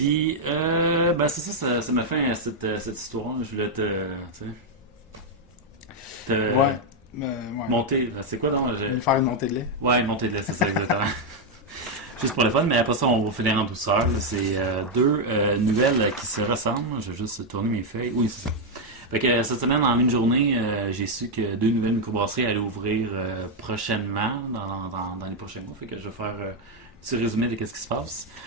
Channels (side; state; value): both; normal; correlation 0.00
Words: ben, c'est ça m'a fait cette histoire. Je voulais tu sais, Ouais. Ouais. monter. C'est quoi donc? Je vais faire une montée de lait. Ouais, une montée de lait, c'est ça, exactement. Juste pour le fun, mais après ça, on va finir en douceur. Là. C'est deux nouvelles qui se ressemblent. Je vais juste tourner mes feuilles. Oui, c'est ça. Fait que cette semaine, en une journée, j'ai su que deux nouvelles microbrasseries allaient ouvrir prochainement, dans les prochains mois. Fait que je vais faire un petit résumé de ce qui se passe.